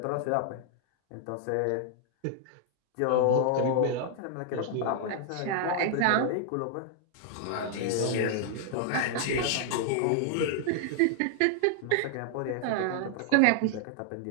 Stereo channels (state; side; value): different; both; correlation 0.00